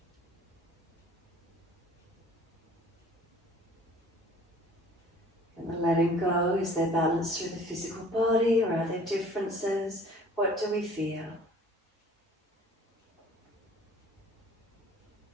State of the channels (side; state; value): both; normal; correlation 0.50